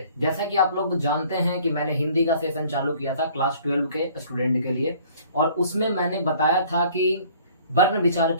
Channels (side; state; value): both; inverted; correlation -0.54